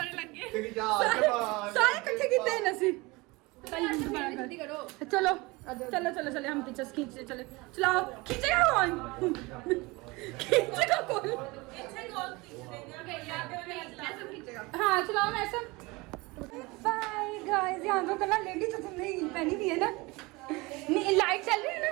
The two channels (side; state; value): left; quieter; 23.9 dB